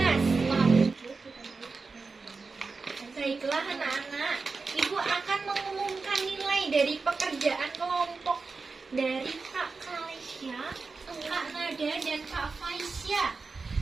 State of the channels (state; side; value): quieter; left; 4.3 dB